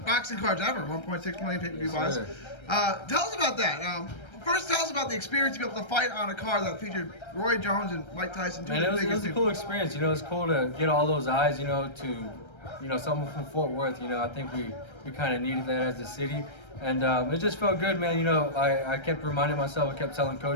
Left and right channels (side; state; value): right; late; 1.3 ms